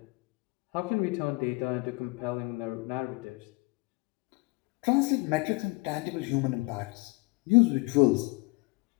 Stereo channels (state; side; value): quieter; right; 26.1 dB